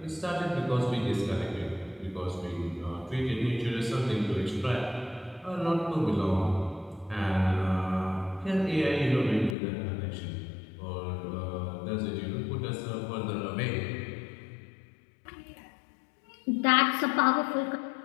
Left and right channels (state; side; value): drops out; right; at 9.6 s